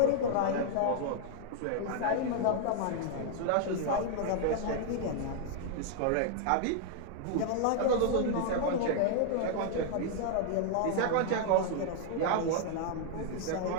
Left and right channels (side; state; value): both; different; correlation 0.00